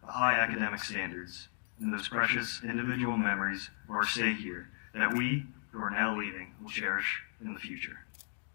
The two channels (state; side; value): silent; right; digital silence